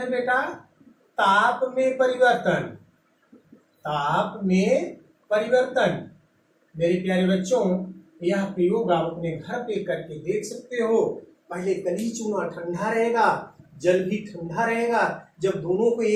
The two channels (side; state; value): both; identical; correlation 1.00